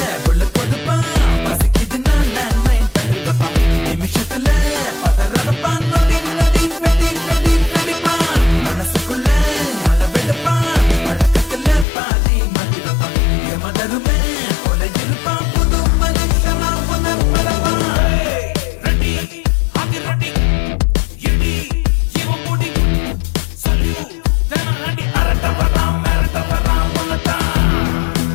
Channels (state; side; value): drops out; right; at 11.9 s